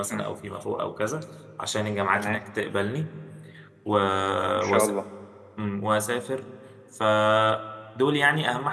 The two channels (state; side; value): identical; both; correlation 1.00